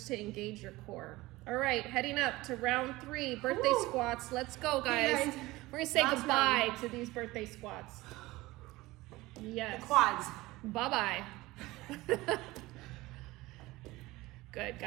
to engage your core. All right, heading up to round 3, birthday squats. Let's go, guys. Hey, guys. We're gonna say Last goodbye round. to these birthday squats. Yes. The quads. Bye-bye. Good,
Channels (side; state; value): left; quieter; 19.6 dB